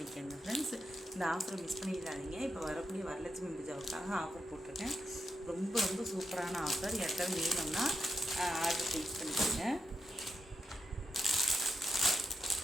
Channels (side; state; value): both; normal; correlation 0.85